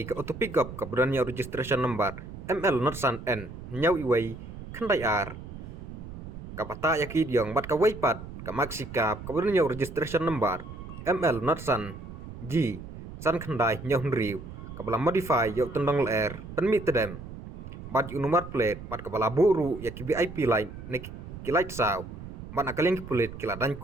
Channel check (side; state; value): right; noise; rumble, 12 dB below the sound